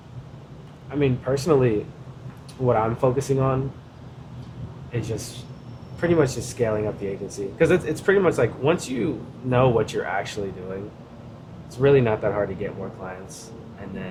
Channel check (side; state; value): both; identical; correlation 1.00